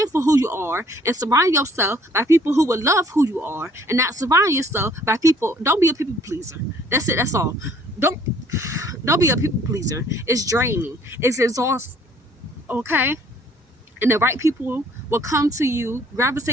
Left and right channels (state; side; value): normal; both; correlation 0.59